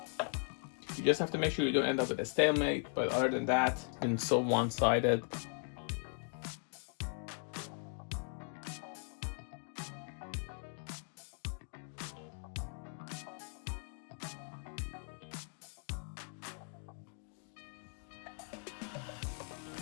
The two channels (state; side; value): silent; right; 52 dB below the other